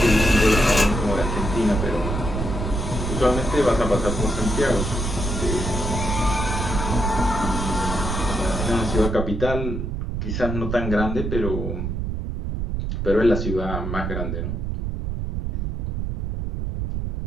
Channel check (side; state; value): right; noise; rumble, 2 dB below the sound